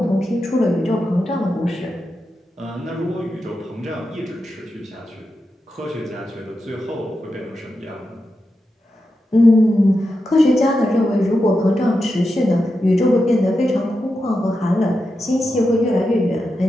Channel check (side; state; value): both; normal; correlation 0.89